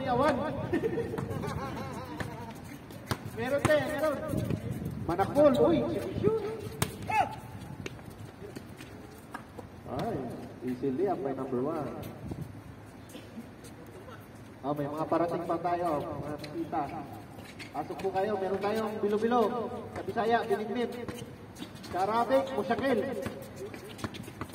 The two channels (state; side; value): identical; both; correlation 1.00